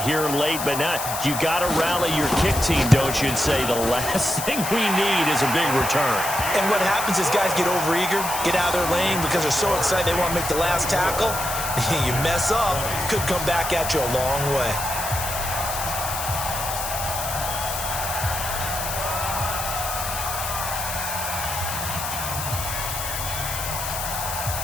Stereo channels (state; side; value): noise; left; hiss, 5 dB below the sound